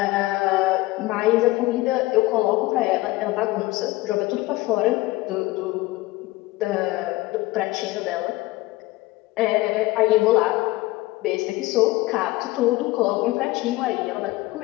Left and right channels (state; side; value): quieter; right; 19.5 dB